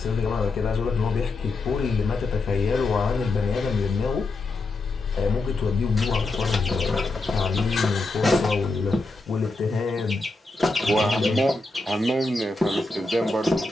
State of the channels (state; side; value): quieter; right; 3.2 dB